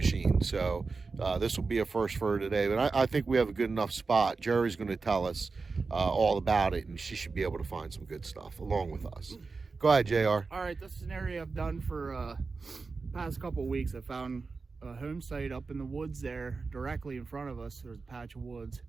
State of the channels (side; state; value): left; quieter; 4.3 dB